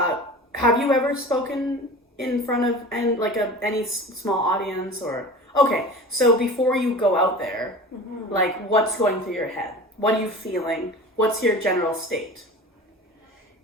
you ever spoken in front of any small audience or... Okay, so before you go out there, like, what's going through your head? What are you feeling? What's your general state?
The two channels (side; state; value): both; normal; correlation 0.36